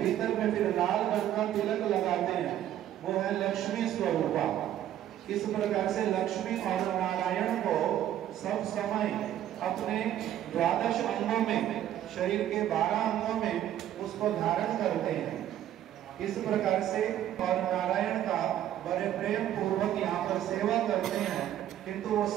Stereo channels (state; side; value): quieter; left; 11.7 dB